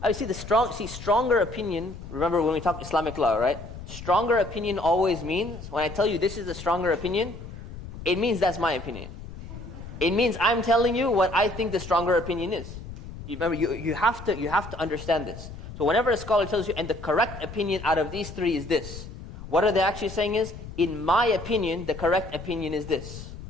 I see stronger opinion, remember when we talk Islamic law, right? Stronger opinion always means, when I tell you this is a stronger opinion, it means that's my opinion. It means I'm telling you what I think the stronger opinion is. Remember, you have to understand this. So whenever a scholar tells you, and the correct opinion out of these three is this, what are they actually saying is, in my opinion, the correct opinion is this.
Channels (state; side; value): noise; left; rumble, 12 dB below the sound